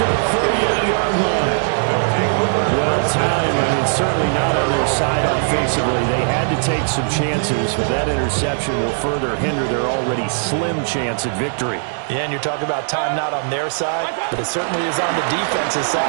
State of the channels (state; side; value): silent; left; digital silence